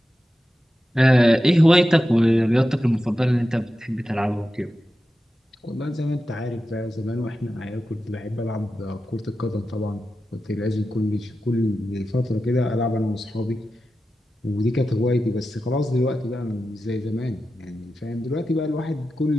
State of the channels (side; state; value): both; normal; correlation 0.92